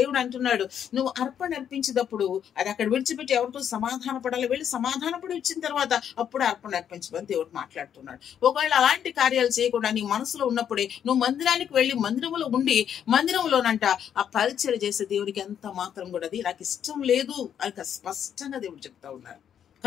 అంటున్నాడు నువ్వు అర్పణ అర్పించేటప్పుడు అది అక్కడ విడిచిపెట్టి ఎవరితో సమాధాన పడాలి, వెళ్ళి సమాధానపడి వచ్చిన తర్వాత అప్పుడు అర్పణ అర్పించమని దేవుడు మాట్లాడుతున్నాడు. ఒకవేళ అలాంటి కార్యాలు చేయకుండా నీ మనసులో ఉన్నప్పుడే నువ్వు మందిరానికి వెళ్ళి మందిరంలో ఉండి మందిరంలోనంట ఆ పరిచయం చేసే దేవుడికి ఎంత మాత్రం కూడా అది నాకు ఇష్టం లేదు అని స్పష్టంగా దేవుడు చెప్తా ఉన్నారు.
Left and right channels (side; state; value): right; quieter; 8.9 dB